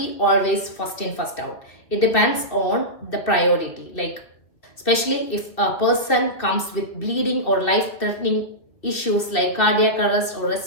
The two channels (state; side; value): late; right; 2.4 ms